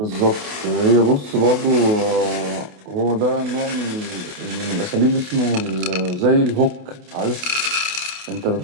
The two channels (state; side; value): late; left; 28 ms